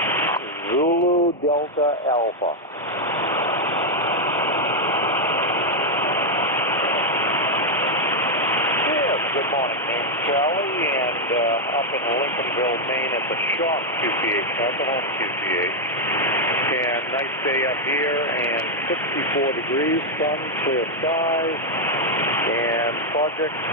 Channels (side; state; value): both; normal; correlation 0.00